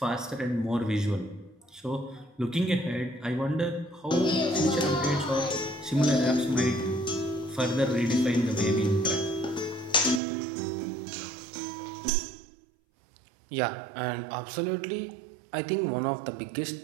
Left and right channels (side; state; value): left; drops out; at 10.2 s